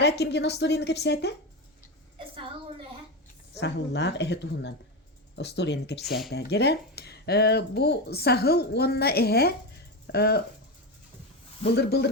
kim gene story'ni kepsete? Sahıllar ehe tuhundan. O story'ni kepsete. Tere bu sahıl onna ehe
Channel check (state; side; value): normal; both; correlation 0.15